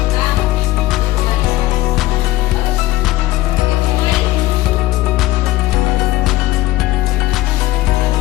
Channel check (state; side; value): quieter; right; 16.9 dB